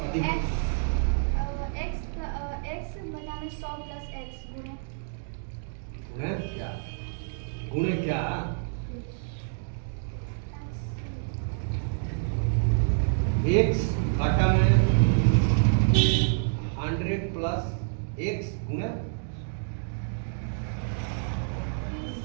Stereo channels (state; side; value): silent; left; digital silence